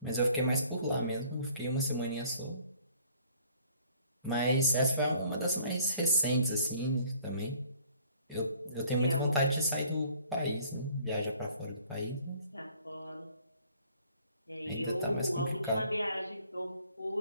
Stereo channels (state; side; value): inverted; both; correlation -0.56